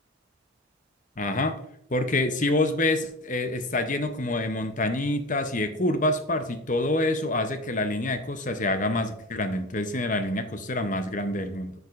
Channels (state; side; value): normal; both; correlation 0.32